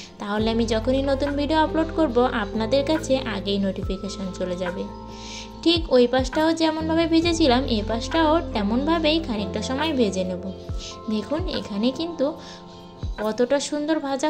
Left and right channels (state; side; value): identical; both; correlation 1.00